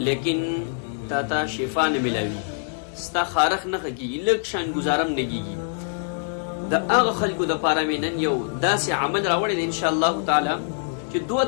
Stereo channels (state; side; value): silent; right; digital silence